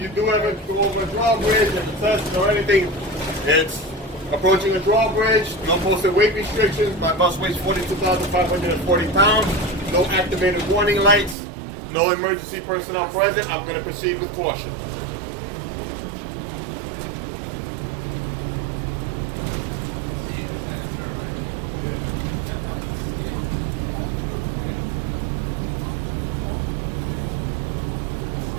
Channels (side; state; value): left; drops out; at 11.4 s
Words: you do ever go over a drawbridge and the test or anything, it's approaching a drawbridge, no posted weight restrictions. My bus weighs 42,540 pounds. No activated warning lights. No emergency personnel present. I'm going to proceed with caution.